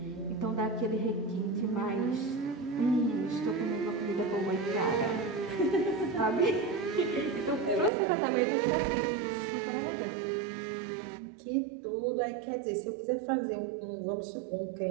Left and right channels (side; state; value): left; drops out; at 7.9 s